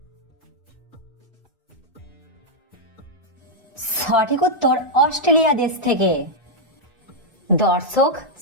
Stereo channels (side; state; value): both; normal; correlation -0.04